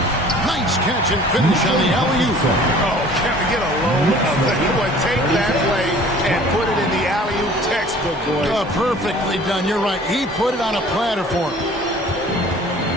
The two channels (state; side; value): normal; both; correlation 0.49